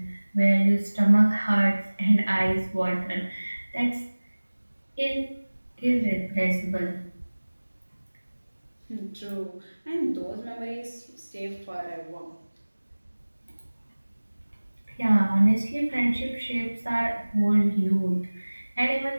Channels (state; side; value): inverted; both; correlation -1.00